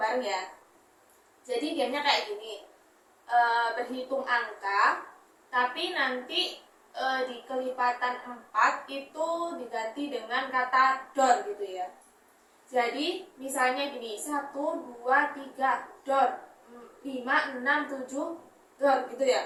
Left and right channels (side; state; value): both; identical; correlation 1.00